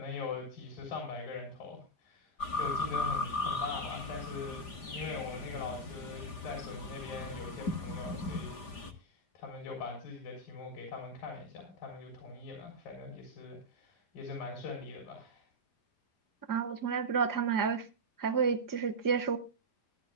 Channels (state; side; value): late; right; 5.0 ms